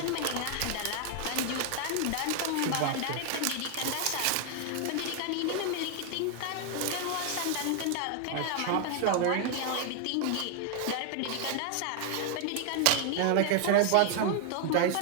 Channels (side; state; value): both; different; correlation 0.00